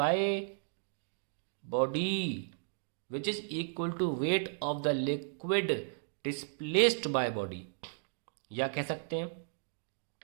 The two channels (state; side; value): silent; left; digital silence